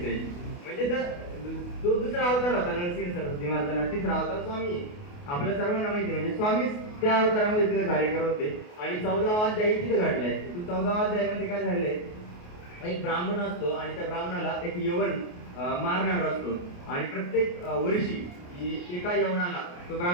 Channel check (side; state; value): right; late; 28 ms